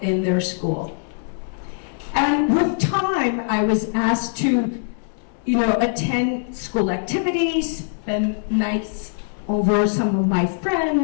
their school. And with time, I was asked to, attend school activities, spend nights over some of my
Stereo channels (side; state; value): right; silent; digital silence